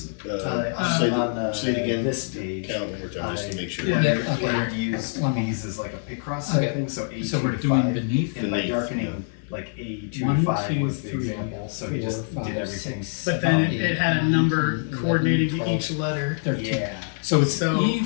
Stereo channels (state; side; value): silent; right; 62 dB below the other